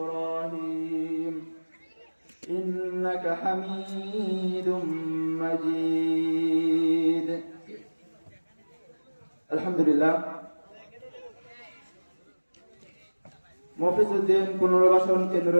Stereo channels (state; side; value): inverted; both; correlation -1.00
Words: إنك حميد مجيد. الحمد لله. মফিজউদ্দিন পুনর্বাসন কেন্দ্র